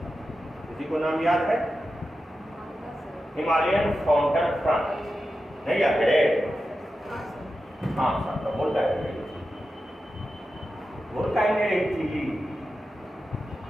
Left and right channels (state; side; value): normal; both; correlation 0.91